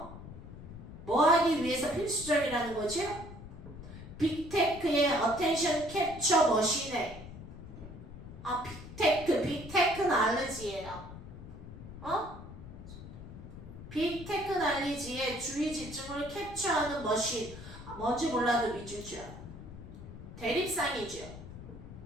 뭐 하기 위해서 필수적이라는 거죠? 빅테크의 attention capture 머신에 빅테크 날리지예요. 빅테크 날리지의 주의 집중을 캡처하는 머신. 뭔지 몰라도 믿주죠. 대립상이죠.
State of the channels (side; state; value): left; noise; rumble, 13 dB below the sound